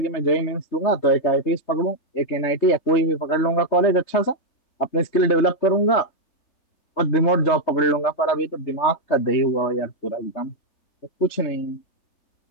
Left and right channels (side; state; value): right; late; 3.3 ms